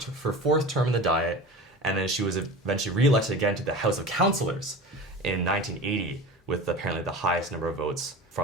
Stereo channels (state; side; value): normal; both; correlation 0.33